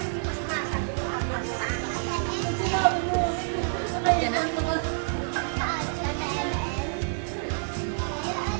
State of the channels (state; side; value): silent; left; digital silence